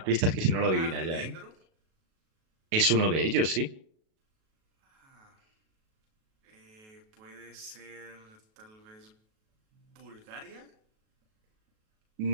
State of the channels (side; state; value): left; late; 37 ms